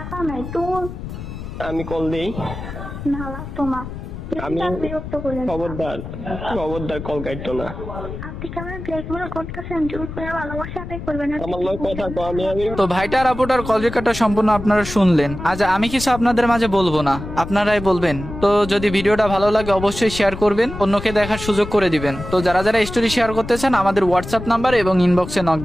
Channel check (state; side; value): noise; left; rumble, 9 dB below the sound